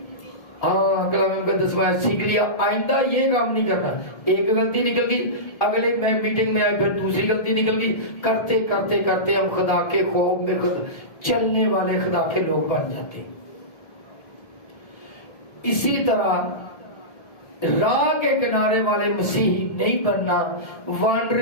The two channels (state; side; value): late; right; 1.7 ms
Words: ہاں کلام کا 10واں سیکھ لیا, آئندہ یہ کام نہیں کرنا. ایک غلطی نکل گئی, اگلے میں میٹنگ میں آئے پھر دوسری غلطی نکل گئی, کرتے کرتے کرتے ہم خدا کے خوف میں چلنے والے خدا کے لوگ بن جاتے. اسی طرح راہ کے کنارے والے مسیحی نہیں بننا,